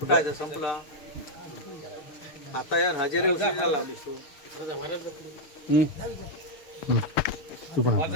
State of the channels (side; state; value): right; late; 6.5 ms